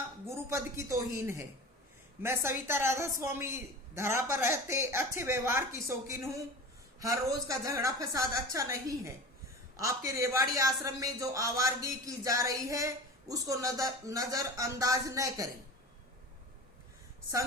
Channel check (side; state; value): both; normal; correlation 0.34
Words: गुरुपद की तौहीन है। मैं सविता राधा स्वामी धरा पर रहते अच्छे व्यवहार की शौकीन हूँ। हर रोज का झगड़ा फसाद अच्छा नहीं है। आपके रेवाड़ी आश्रम में जो आवारगी की जा रही है उसको नजर अंदाज न करें।